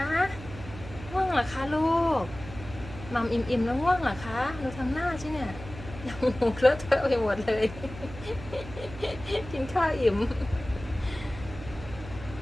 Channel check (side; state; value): right; noise; hum, 13 dB below the sound